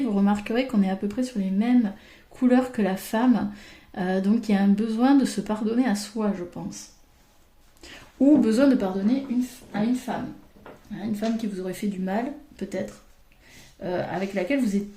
remarquerez qu'on est à peu près sur les mêmes couleurs que la femme, donc il y a un besoin de se pardonner à soi, je pense. Ou besoin de pardonner à une femme qui vous aurait fait du mal, peut-être. avec laquelle vous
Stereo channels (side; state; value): both; identical; correlation 1.00